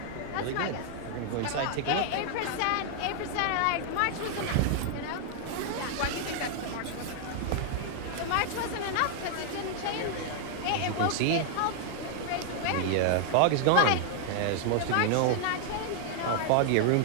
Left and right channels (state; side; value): different; both; correlation 0.00